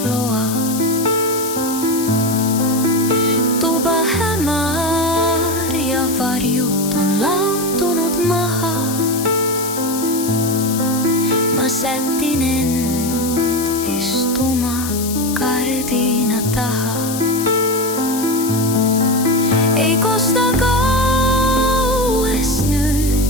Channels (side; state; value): left; noise; hiss, 8 dB below the sound